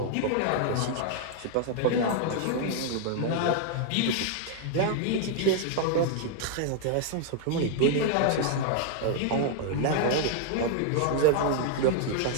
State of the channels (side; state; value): both; different; correlation 0.00